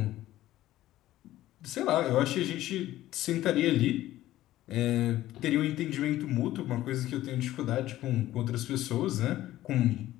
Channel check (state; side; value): quieter; right; 14.8 dB